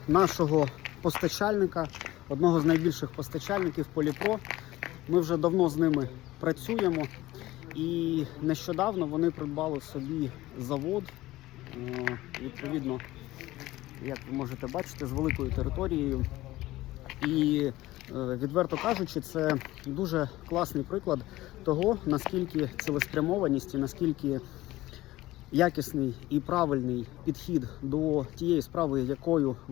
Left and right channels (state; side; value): quieter; right; 17.2 dB